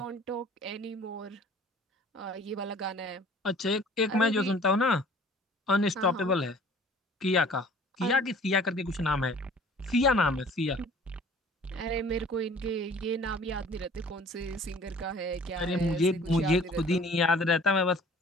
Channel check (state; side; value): normal; both; correlation 0.50